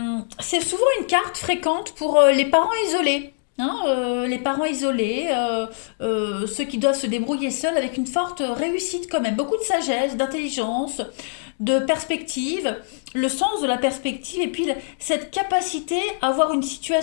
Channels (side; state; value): right; silent; digital silence